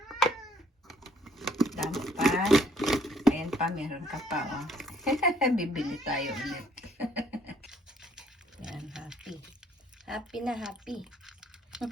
Dami pa. Ayan pa, meron ka pa, oh. Bibili tayo ulit. Yan, happy. Happy na happy.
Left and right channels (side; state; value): both; normal; correlation 0.64